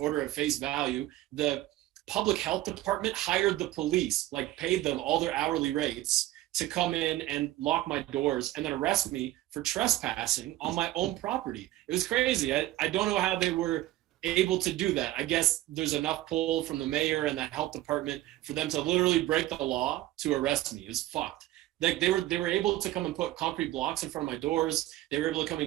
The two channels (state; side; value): quieter; left; 15.7 dB